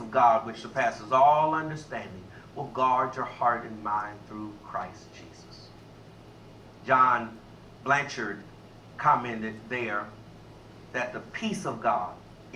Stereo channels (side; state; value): both; identical; correlation 1.00